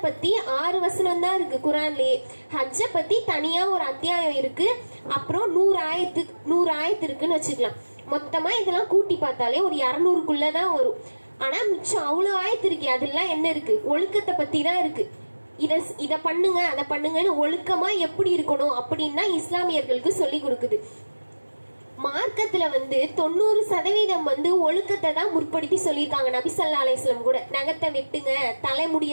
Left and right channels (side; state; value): both; inverted; correlation -1.00